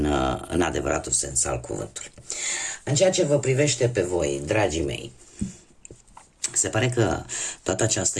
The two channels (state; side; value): identical; both; correlation 1.00